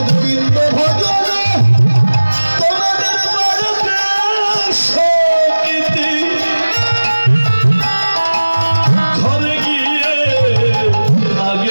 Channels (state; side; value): inverted; both; correlation -1.00